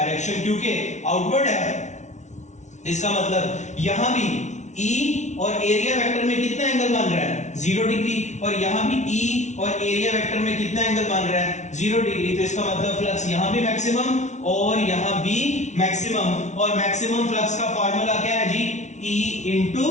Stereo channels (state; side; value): late; right; 0.34 ms